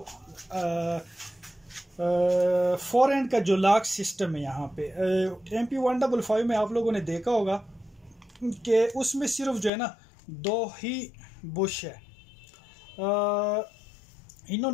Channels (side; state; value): right; drops out; at 9.7 s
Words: फोर एंड का जो लॉक सिस्टम है। यहाँ पे MP 155 में आप लोगों ने देखा होगा कि उसमें सिर्फ जो है ना दो ही बुश है।